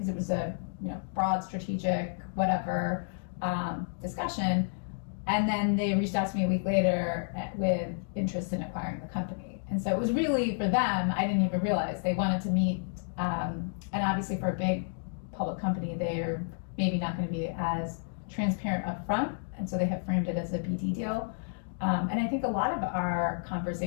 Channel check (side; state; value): right; silent; digital silence